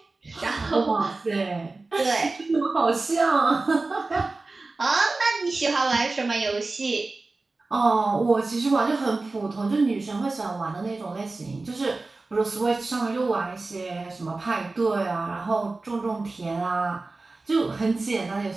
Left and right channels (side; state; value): left; quieter; 3.4 dB